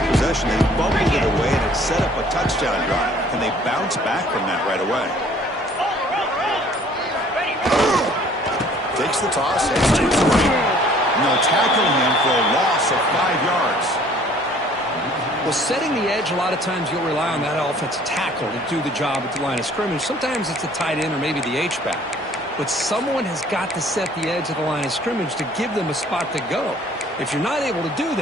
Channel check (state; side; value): normal; both; correlation 0.55